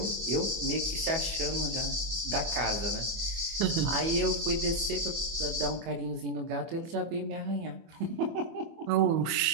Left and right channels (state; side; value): late; left; 24 ms